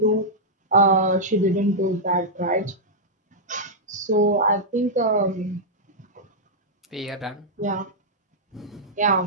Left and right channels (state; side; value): normal; both; correlation -0.09